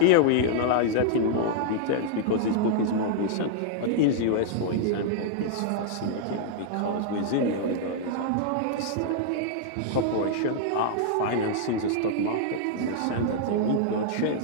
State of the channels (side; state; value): both; different; correlation -0.01